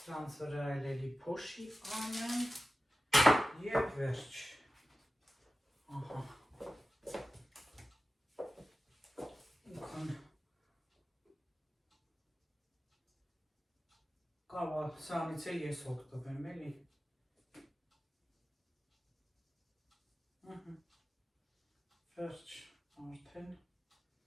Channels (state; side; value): normal; both; correlation 0.94